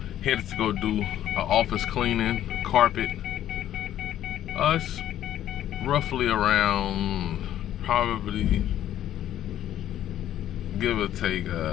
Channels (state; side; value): quieter; right; 11.8 dB